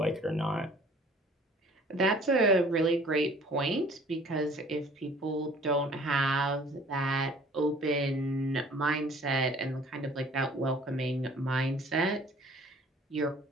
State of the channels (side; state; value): both; normal; correlation 0.52